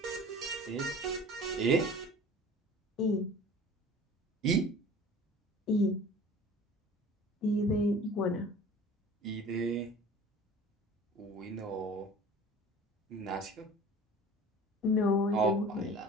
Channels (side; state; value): both; normal; correlation 0.43